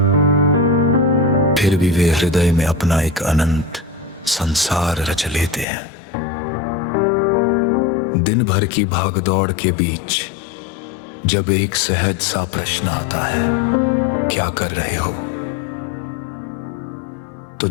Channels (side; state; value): right; drops out; at 5.7 s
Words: फिर भी वे हृदय में अपना एक अनंत संसार रच लेते हैं। दिन भर की भागदौड़ के बीच जब एक सहज सा प्रश्न आता है, क्या कर रहे हो, तो